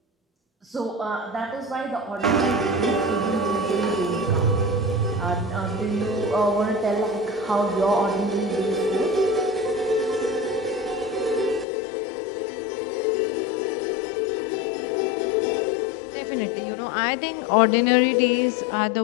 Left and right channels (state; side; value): drops out; right; at 11.7 s